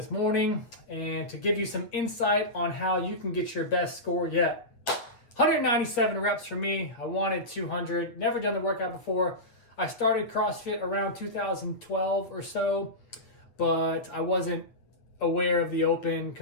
morning, and to give you some insight on how you can get your best score yet. 197 reps for me. I wanted 200. Never done the workout before. I started CrossFit around 2012 or so, but I wasn't aware of the open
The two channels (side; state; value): right; late; 8.4 ms